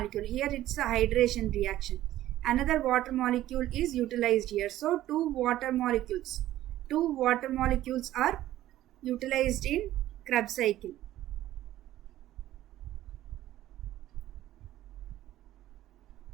Here it's a hydration reaction. Another water molecule is utilized here. So two water molecules are utilized in Krebs cycle.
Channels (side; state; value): left; quieter; 14.1 dB